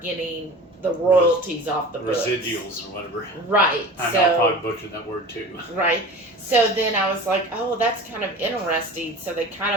getting the royalties off the books. Residuals or whatever. Right. I know I probably butchered that word too. Right. So then I was like, oh, that's kind of interesting. So they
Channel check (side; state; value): both; normal; correlation 0.37